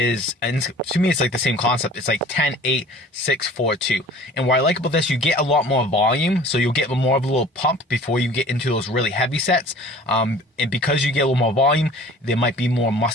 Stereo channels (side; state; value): both; normal; correlation 0.46